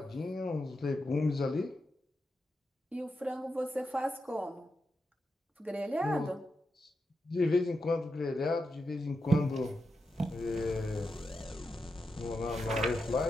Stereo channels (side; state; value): both; normal; correlation 0.87